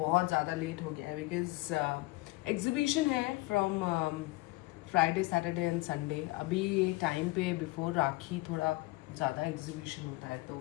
ज़्यादा लेट हो गया है बिकॉज एग्जीबिशन है from Friday Saturday and Sunday. अभी टाइम पे बिफोर राखी थोड़ा ज़्यादा एग्जीबिशन होता है तो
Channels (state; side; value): quieter; right; 21.7 dB